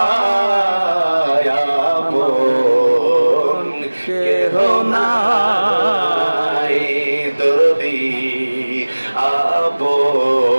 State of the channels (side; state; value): both; inverted; correlation -1.00